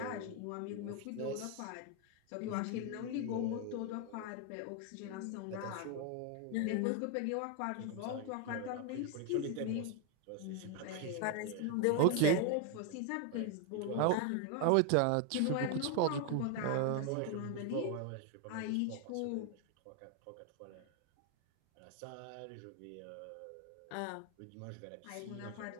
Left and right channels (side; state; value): both; different; correlation 0.01